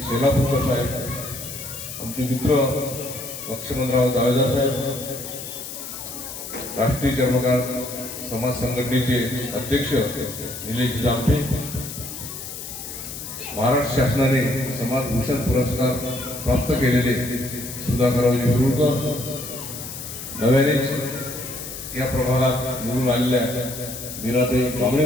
सेलापूरकर साहेब, आमचे मित्र लक्ष्मणराव दावेदार साहेब, राष्ट्रीय चर्मकार समाज संघटनेचे अध्यक्ष निलेश जामटे, महाराष्ट्र शासनाने समाजभूषण पुरस्कार प्राप्त केलेले सुधाकररावजी बिरुळकर, नव्यानेच या प्रभागात निवडून आलेल्या मीराताई कांबळे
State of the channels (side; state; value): left; noise; hiss, 9 dB below the sound